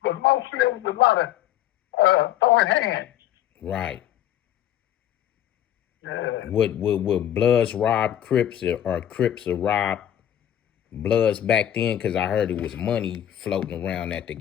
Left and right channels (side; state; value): right; quieter; 11.3 dB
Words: but mostly it was a lot of throwing hands. Right. Yeah. Would Bloodz rob Crips, or Crips rob Bloodz back then? Because I heard it was money floating around at the